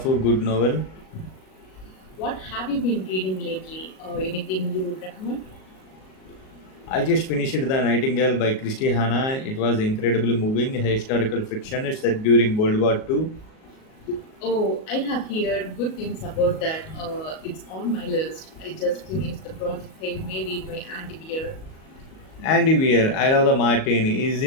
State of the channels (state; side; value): late; right; 38 ms